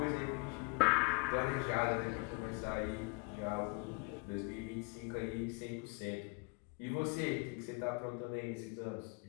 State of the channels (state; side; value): quieter; right; 32.1 dB